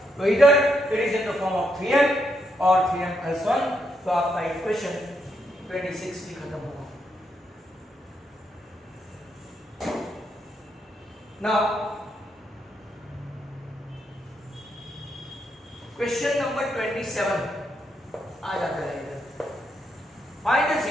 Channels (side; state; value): both; normal; correlation 0.79